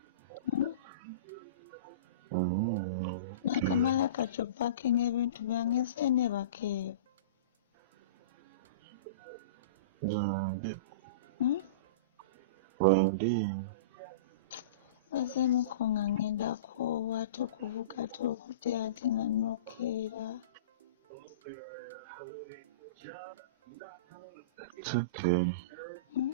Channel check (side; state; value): both; inverted; correlation -0.34